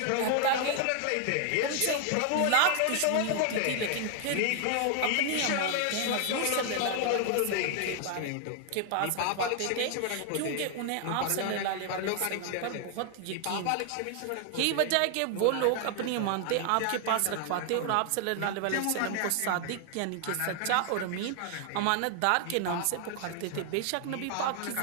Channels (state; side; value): different; both; correlation 0.00